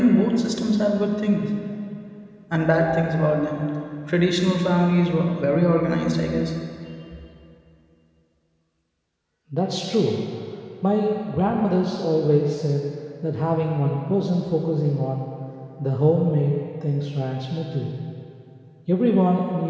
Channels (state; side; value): identical; both; correlation 1.00